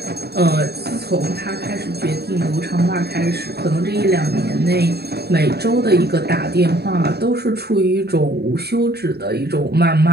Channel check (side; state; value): left; late; 0.47 ms